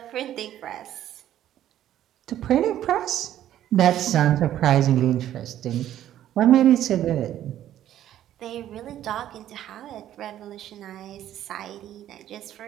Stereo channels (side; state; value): left; quieter; 11.9 dB